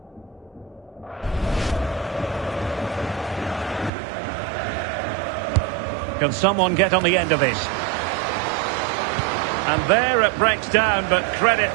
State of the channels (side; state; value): left; drops out; at 3.9 s